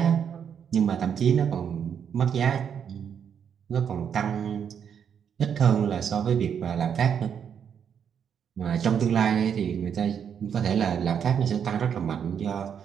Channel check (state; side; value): quieter; left; 7.9 dB